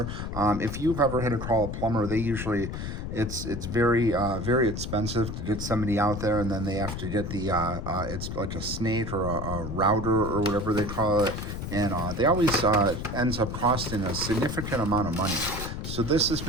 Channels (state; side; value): noise; left; rumble, 5 dB below the sound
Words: If you've ever had to call a plumber, they usually, it's very expensive to get somebody out there, and then they have to get the, it's like a snake or a router or whatever they call it. And they always ends up costing a significant amount of money. So this is